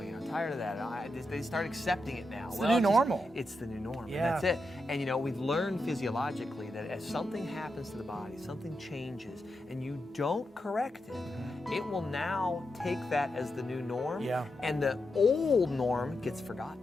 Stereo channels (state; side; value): normal; both; correlation 0.86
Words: I'm tired of that. They start accepting it now. It's the new normal. It's the new norm. Yeah. And that's it. And you know, we've learned physiologically that as something happens to the body, something changes, and you don't correct it, it will now take that as the new norm. Yeah. And the old norm gets